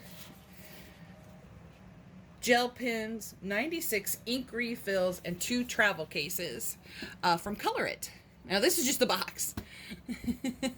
gel pens, 96 ink refills, and 2 travel cases from Color It. Now this is just the box.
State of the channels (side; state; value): both; identical; correlation 1.00